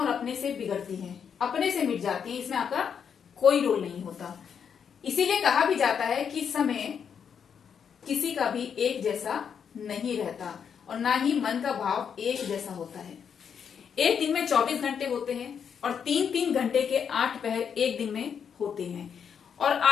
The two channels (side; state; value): right; quieter; 7.3 dB